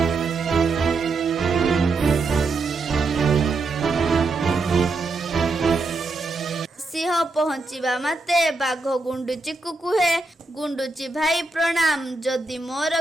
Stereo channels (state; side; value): quieter; left; 3.5 dB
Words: ସିଂହ ପହଞ୍ଚିବା ମାତ୍ରେ ବାଘ ଗୁଣ୍ଡୁଚିକୁ କୁହେ, ଗୁଣ୍ଡୁଚି ଭାଇ ପ୍ରଣାମ। ଯଦି